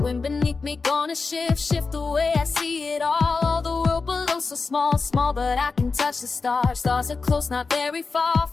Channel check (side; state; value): right; quieter; 4.3 dB